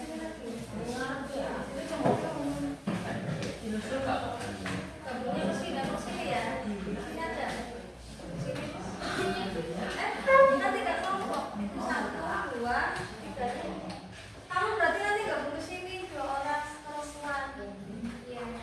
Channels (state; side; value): identical; both; correlation 1.00